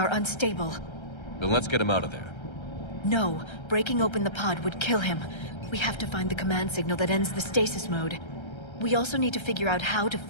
unstable. Then let's get him out of there. No, breaking open the pod would kill him. We have to find the command signal that ends the stasis mode. We also need to figure out how to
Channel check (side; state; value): right; late; 1.3 ms